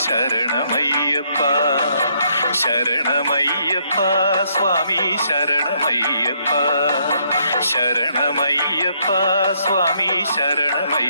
ശരണമയ്യപ്പ. ശരണമയ്യപ്പ സ്വാമി ശരണമയ്യപ്പ. ശരണമയ്യപ്പ സ്വാമി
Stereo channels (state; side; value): inverted; both; correlation -0.71